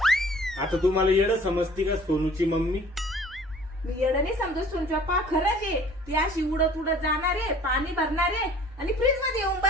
आता तुम्हाला येडं समजती का सोनूची मम्मी? मी येडं नाही समजत सोनूची पप्पा, खरंच आहे. ती अशी उडत उडत जाणार आहे, पाणी भरणार आहे आणि फ्रीज मध्ये येऊन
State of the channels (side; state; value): both; normal; correlation 0.51